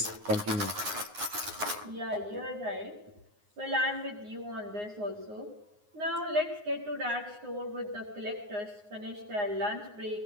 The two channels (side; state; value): left; late; 9.6 ms